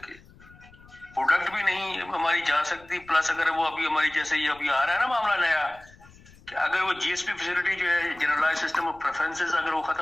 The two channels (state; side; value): noise; left; rumble, 25 dB below the sound